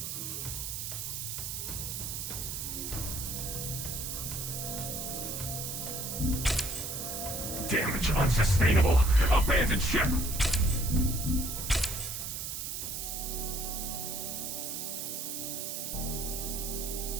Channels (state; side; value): noise; right; hiss, 4 dB below the sound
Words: Damage unsustainable. Abandoned ship.